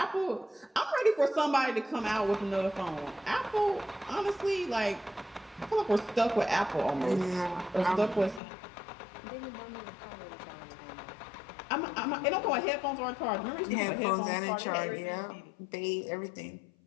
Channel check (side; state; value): right; drops out; at 8.4 s